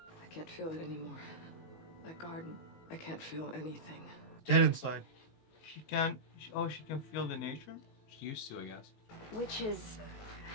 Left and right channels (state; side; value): late; right; 19 ms